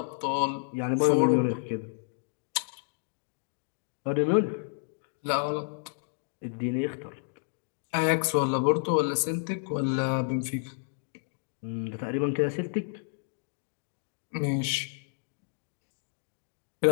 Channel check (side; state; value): right; silent; digital silence